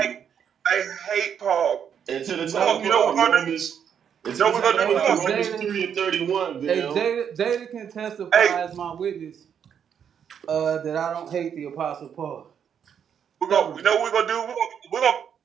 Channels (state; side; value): quieter; left; 8.1 dB